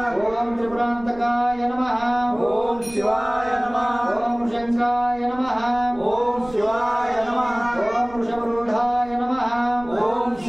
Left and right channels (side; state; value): right; noise; rumble, 20 dB below the sound